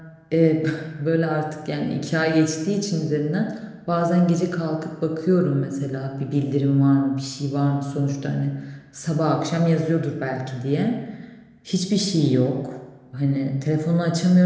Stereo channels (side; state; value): both; identical; correlation 1.00